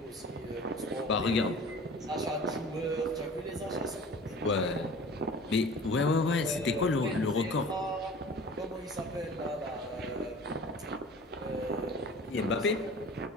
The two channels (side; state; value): both; normal; correlation 0.42